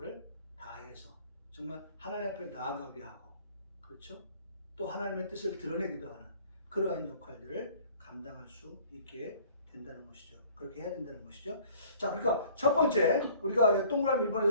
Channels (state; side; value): inverted; both; correlation -0.53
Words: 다해서 정말 하나님 앞에 나아가게 하고, 그렇죠? 또 하나님의 뜻을 드러내기도 하는 그러한 역할들을 감당할 수 있게 된다는 것이죠. 그렇게 해야 된다는 것이죠. 자, 그러니까 첫 번째 우리가 동그라미